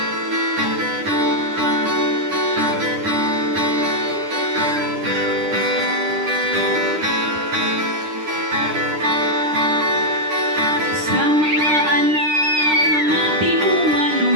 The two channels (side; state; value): left; late; 9.9 ms